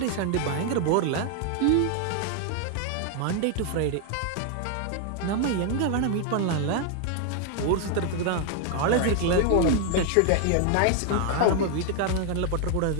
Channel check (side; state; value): both; different; correlation 0.00